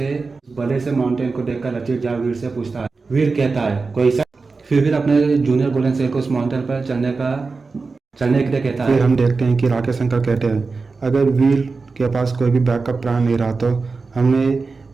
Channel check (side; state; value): left; quieter; 4.2 dB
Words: से माउंटेन को देखकर रचित जा वीर से पूछता है। वीर कहता है कोई सा। फिर अपने जूनियर गोल्डन शेर को उस माउंटेन पर चलने के लिए कहता है। फिर हम देखते हैं कि राकेश शंकर कहते हैं अगर वीर के पास कोई भी बैकअप प्लान नहीं रहा तो हमें